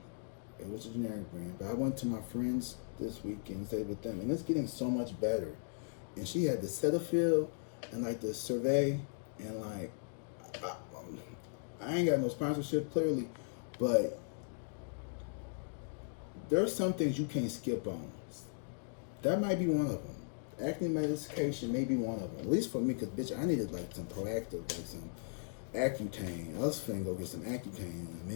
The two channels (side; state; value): right; silent; digital silence